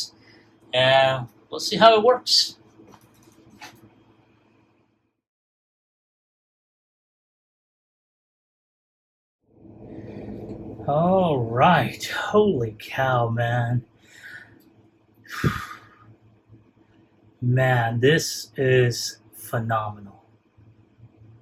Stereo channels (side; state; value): both; identical; correlation 1.00